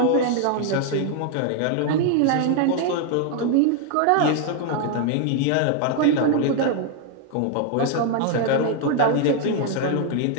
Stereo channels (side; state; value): both; different; correlation 0.00